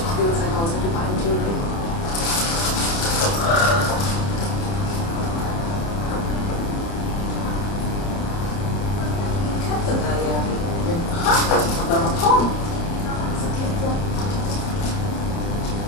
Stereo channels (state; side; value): late; right; 30 ms